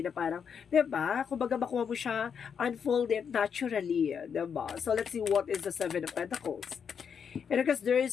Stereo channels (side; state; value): right; quieter; 7.0 dB